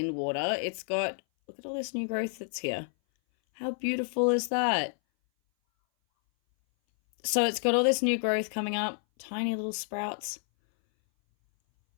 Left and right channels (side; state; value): right; silent; 58 dB below the other